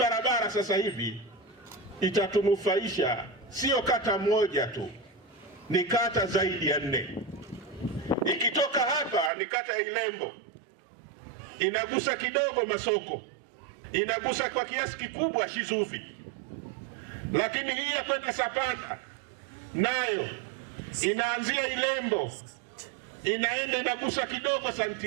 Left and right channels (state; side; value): drops out; left; at 9.3 s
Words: sasa hivi itatunufaisha sio kata moja tu, ni kata zaidi ya 4. Ikitoka hapa ni kata ya Ilembo, inagusa kidogo Masoko, inagusa kwa kiasi kikubwa Shizuvi, lakini hii ya kwenda Sapanda nayo inaanzia Ilembo, inaenda inagusa kidogo